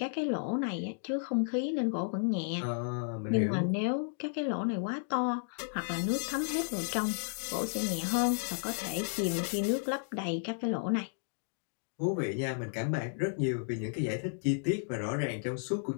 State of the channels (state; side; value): silent; right; digital silence